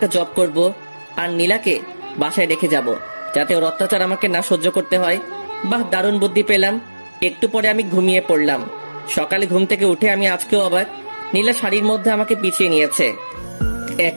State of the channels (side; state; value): both; inverted; correlation -1.00